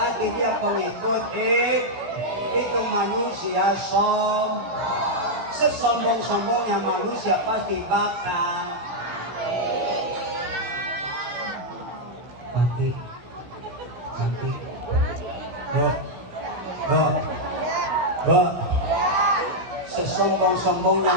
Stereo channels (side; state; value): left; late; 16 ms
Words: dia pengikut itu manusia sesombong-sombongnya manusia pasti bakal mati. Sesombong-sombongnya